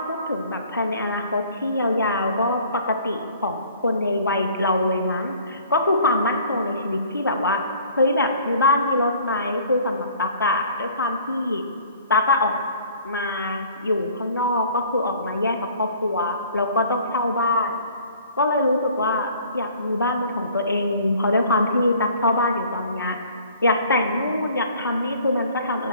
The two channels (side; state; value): both; inverted; correlation -0.53